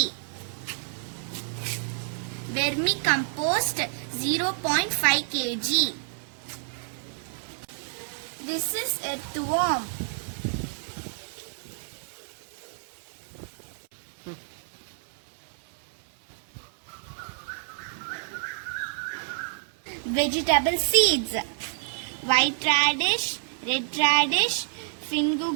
Vermicompost 0.5 kg. This is earthworm. Vegetable seeds. White radish, red radish,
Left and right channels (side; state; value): left; silent; 59 dB below the other